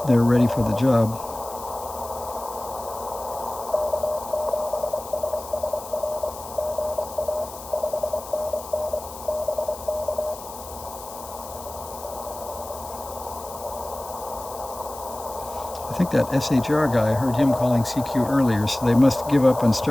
they're ready for the job. I think that SHR guy, I heard him calling CQ earlier, so they must give up and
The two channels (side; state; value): left; noise; hiss, 15 dB below the sound